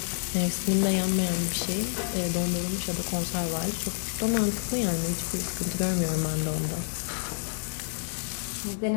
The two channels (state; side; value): silent; right; digital silence